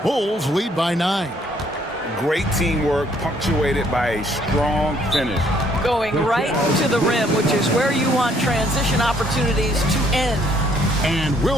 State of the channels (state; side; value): normal; both; correlation 0.65